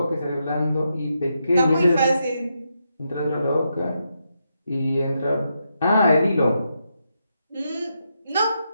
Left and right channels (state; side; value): inverted; both; correlation -0.83